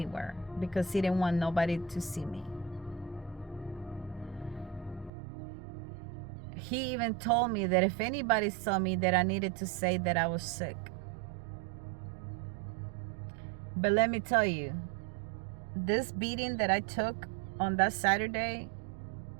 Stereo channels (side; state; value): left; drops out; at 5.1 s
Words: because he didn't want nobody to see me. He even told me that if anybody saw me, that I needed to say that I was sick. But let me tell you, this beating that I took on that Saturday